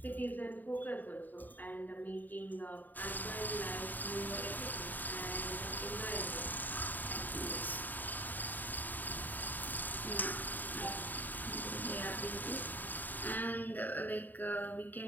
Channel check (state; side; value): late; right; 0.088 ms